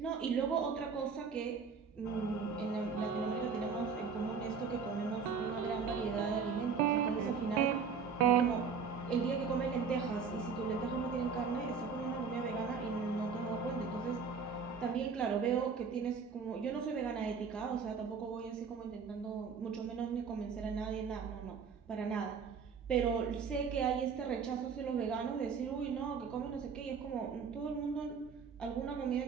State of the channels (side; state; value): left; quieter; 5.7 dB